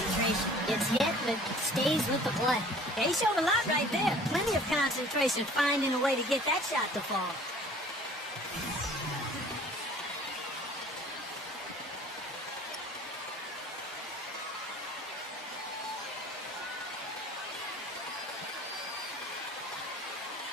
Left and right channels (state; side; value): normal; both; correlation 0.49